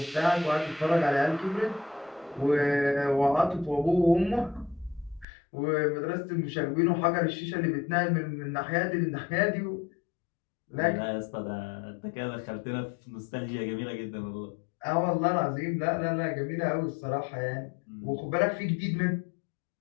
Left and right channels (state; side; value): drops out; right; at 5.2 s